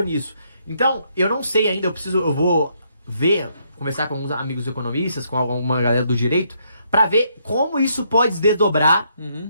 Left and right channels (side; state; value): both; inverted; correlation -0.73